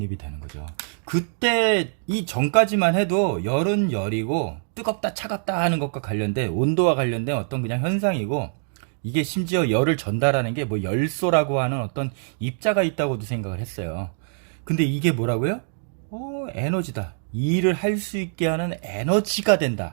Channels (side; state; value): left; silent; digital silence